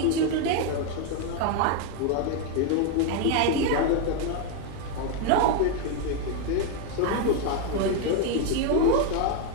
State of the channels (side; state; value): both; different; correlation 0.01